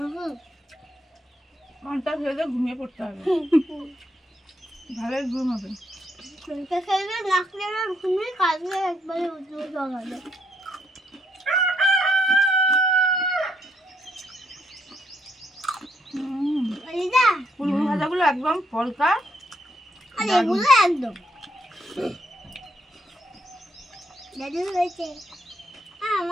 পান্তা খেলে ঘুমিয়ে পড়তে হবে, ভালোই ঘুম হবে। শুনতে খেলে নাকলে ঘুমিয়ে কাজে একবারে উঠে জগাবে। দিদা ফুলগুলো ভাজাগুলো একদম পলকা, আর এগুলো একদম দাদু হয়েছে।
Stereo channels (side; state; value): both; normal; correlation 0.74